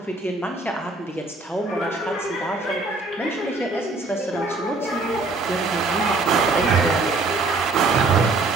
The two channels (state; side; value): quieter; left; 3.5 dB